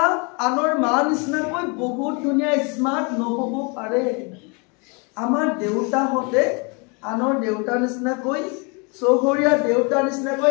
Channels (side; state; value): right; quieter; 32.3 dB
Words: আনৰ মা নিচিনাকৈ বহুত ধুনীয়া স্মাৰ্ট নহ'ব পাৰে, আমাৰ দেউতাহঁতে আনৰ দেউতাৰ নিচিনাকৈ, চহৰীয়া দেউতাৰ নিচিনাকৈ